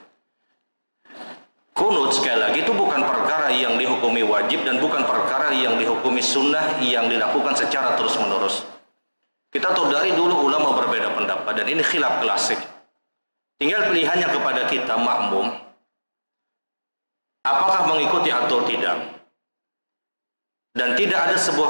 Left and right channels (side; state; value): both; inverted; correlation -1.00